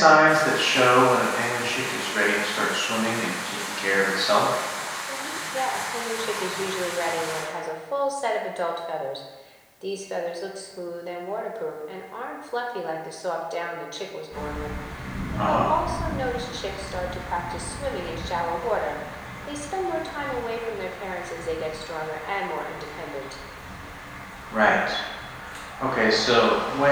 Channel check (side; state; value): both; identical; correlation 1.00